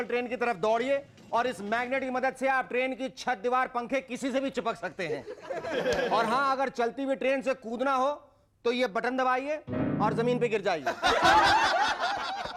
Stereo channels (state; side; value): identical; both; correlation 1.00